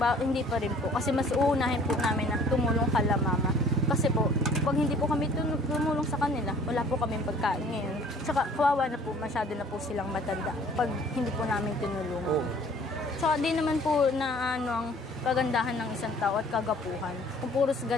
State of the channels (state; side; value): normal; both; correlation 0.54